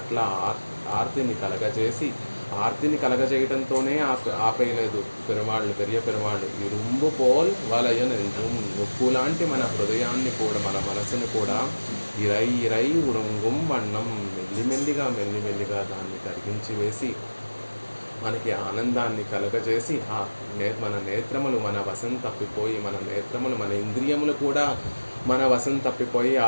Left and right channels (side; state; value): both; inverted; correlation -1.00